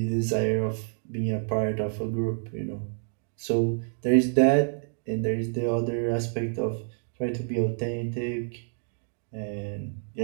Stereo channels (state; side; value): silent; left; digital silence